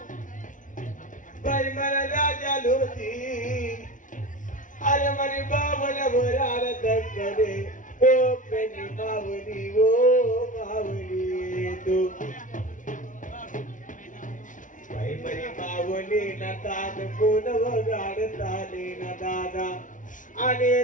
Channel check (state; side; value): late; right; 0.37 ms